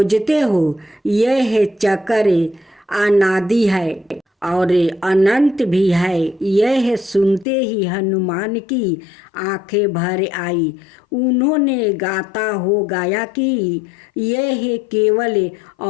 हो। यह चक्र अनादि है और अनंत भी है। यह सुनते ही हनुमान की आंखें भर आई। उन्होंने गाता हो गाया कि यह केवल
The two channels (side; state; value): right; drops out; at 7.5 s